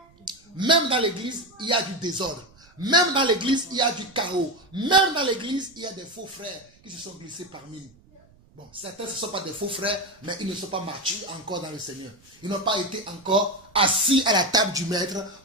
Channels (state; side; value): noise; right; rumble, 29 dB below the sound